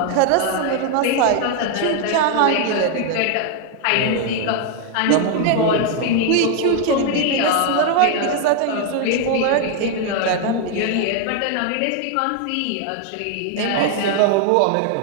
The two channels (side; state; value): both; different; correlation 0.00